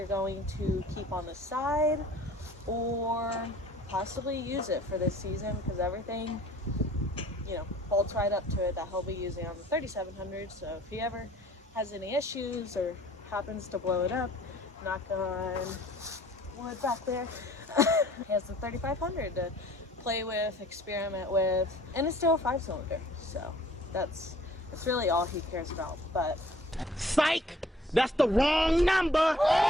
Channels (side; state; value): both; normal; correlation 0.53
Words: going to keep on the side or possibly use it for this season, because everything, you know, bolts right up to it that he'll be using on the 3700. So if he ever has any issues or happens to blow it up, knock on wood back there, he has the 3500 to play with, experiment with, and it's still a 5-cylinder. So that's really all he cares about. But psych, that's the wrong number.